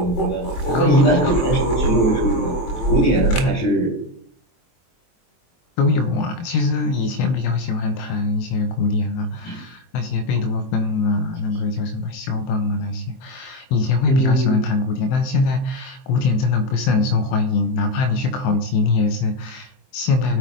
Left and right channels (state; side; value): late; right; 23 ms